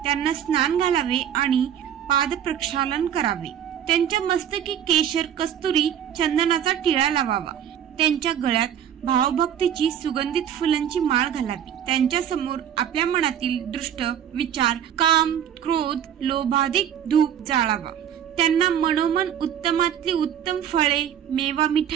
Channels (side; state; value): left; quieter; 9.5 dB